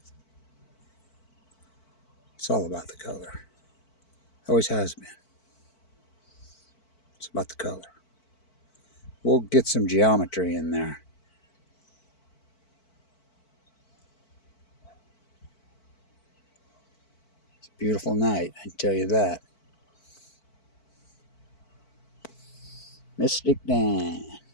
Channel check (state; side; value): late; right; 4.5 ms